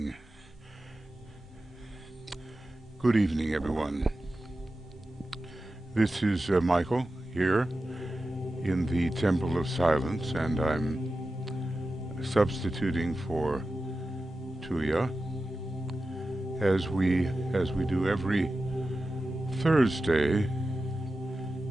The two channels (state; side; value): normal; both; correlation 0.93